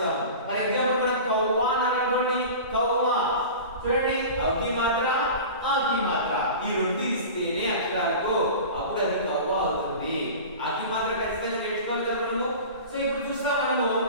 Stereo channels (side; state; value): both; inverted; correlation -0.35